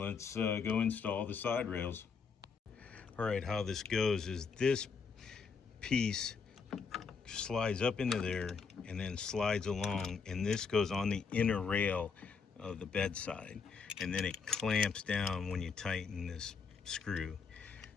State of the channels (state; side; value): quieter; right; 5.5 dB